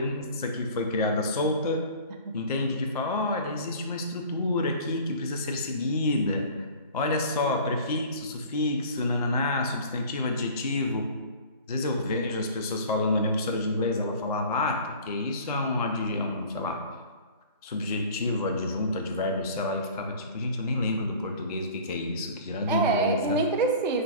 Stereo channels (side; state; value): both; inverted; correlation -0.43